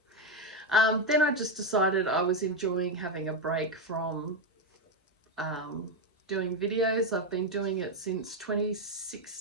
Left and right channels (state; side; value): normal; both; correlation 0.08